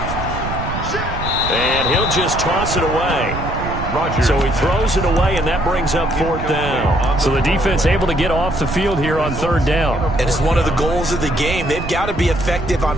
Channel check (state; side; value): noise; right; rumble, 7 dB below the sound